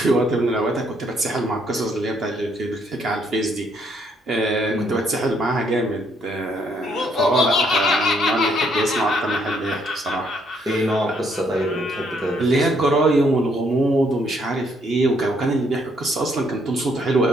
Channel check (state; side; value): normal; both; correlation 0.70